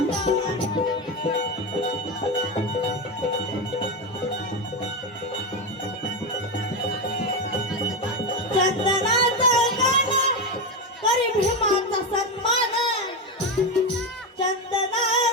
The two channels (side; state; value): both; normal; correlation 0.13